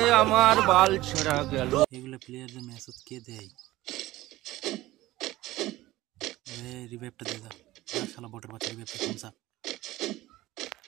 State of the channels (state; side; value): quieter; left; 17.1 dB